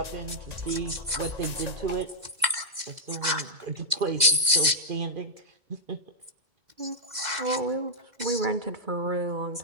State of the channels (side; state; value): left; late; 2.0 ms